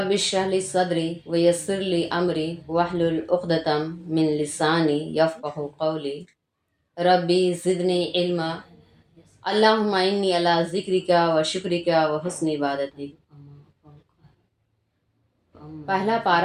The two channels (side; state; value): both; identical; correlation 1.00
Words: اشرح لی صدری ویسر لی امری واحلل عقدۃ من لسانی یفقہوا قولی۔ ربی زدنی علما، اللہم انی علی ذکرک و شکرک و حسن عبادتی۔ پہلا